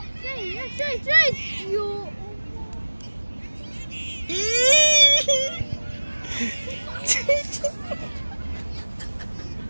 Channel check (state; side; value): inverted; both; correlation -1.00